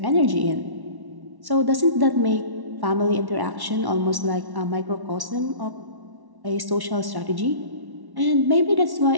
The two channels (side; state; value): left; late; 1.1 ms